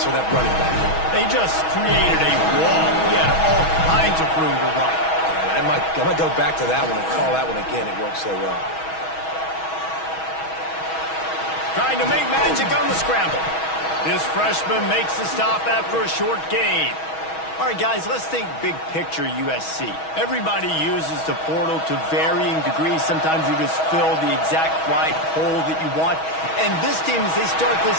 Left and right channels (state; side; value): late; right; 6.2 ms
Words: for that running back. They just created a wall. He had all kinds of room to run. Yeah, I might go back to that one and call that one again. It worked so well. Trying to make magic on the scramble. This freshman makes the stop after a short gain. All right, guys, let's think big picture USC. Everybody uses the portal to varying degrees. Sometimes you just fill the exact right hole that you want. And this team, as they start this